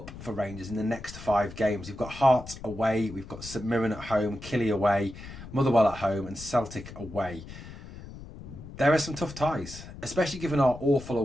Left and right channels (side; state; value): left; noise; rumble, 14 dB below the sound